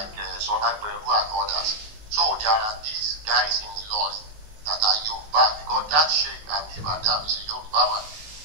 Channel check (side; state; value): left; late; 19 ms